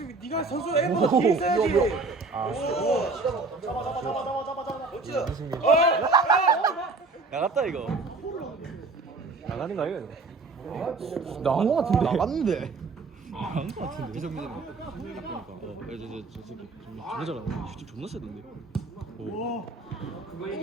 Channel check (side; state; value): left; quieter; 3.8 dB